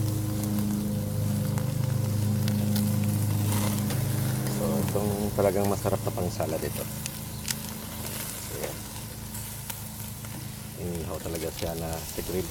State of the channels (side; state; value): both; identical; correlation 1.00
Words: So, itong talagang masarap na pang salad ito. So, inihaw talaga siya na sa grill.